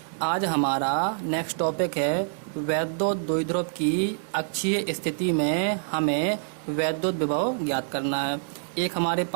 आज हमारा नेक्स्ट टॉपिक है वैद्युत द्विध्रुव की अक्षीय स्थिति में हमें वैद्युत विभव ज्ञात करना है। एक हमारे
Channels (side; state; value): left; silent; digital silence